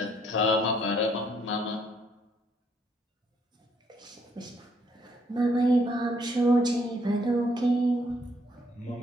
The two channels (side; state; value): both; normal; correlation 0.69